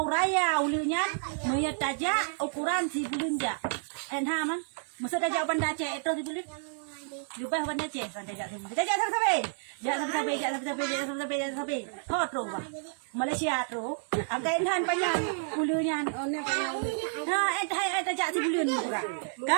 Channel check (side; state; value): left; silent; digital silence